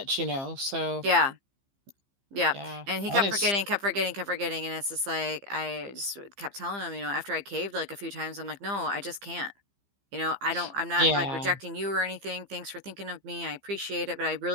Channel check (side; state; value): left; late; 15 ms